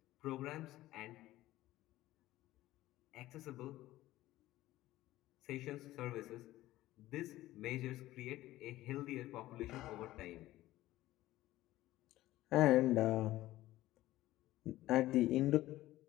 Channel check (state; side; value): quieter; right; 16.0 dB